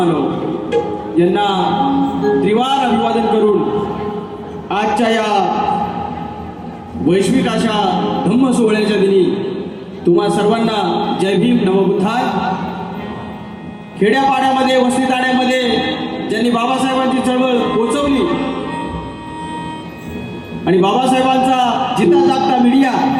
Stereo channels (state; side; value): identical; both; correlation 1.00